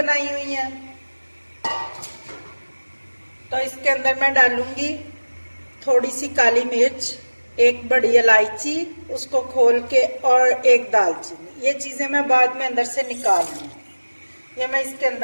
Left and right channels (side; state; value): both; inverted; correlation -1.00